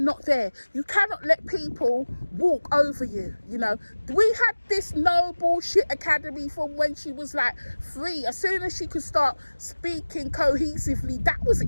not there. You cannot let people walk over you. You know, we had this no bullshit academy from when she was like 3. As soon as she could start speaking cohesively, that was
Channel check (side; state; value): both; inverted; correlation -1.00